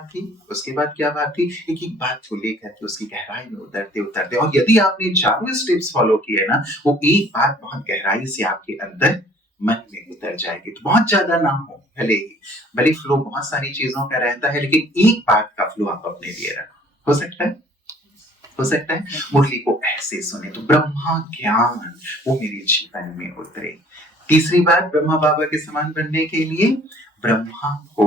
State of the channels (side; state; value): both; normal; correlation 0.54